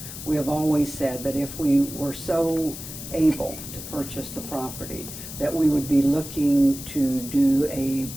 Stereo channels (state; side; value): noise; left; hiss, 11 dB below the sound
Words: we have always said that if we were so able to purchase the property, that we would be looking to do a